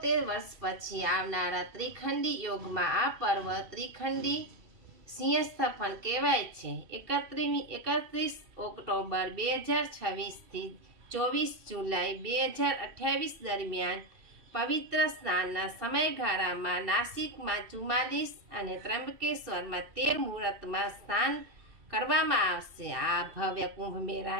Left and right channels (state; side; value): late; left; 2.7 ms